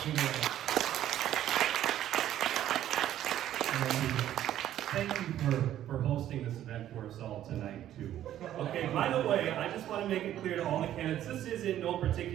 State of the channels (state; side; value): quieter; left; 12.0 dB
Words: it away. Thank you for hosting this event for us all tonight, too. Okay, by the way, I just want to make it clear to all the candidates, this is in no